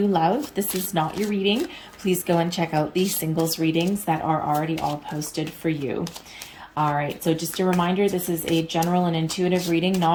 love, this is not your reading. Please go and check out the singles readings that are already all posted for you. All right, so just a reminder, this is a general and intuitive reading,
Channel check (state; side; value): identical; both; correlation 1.00